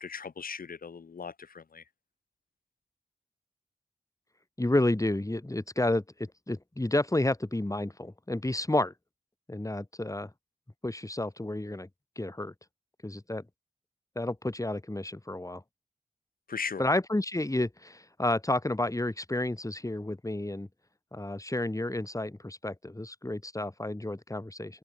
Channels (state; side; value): normal; both; correlation 0.80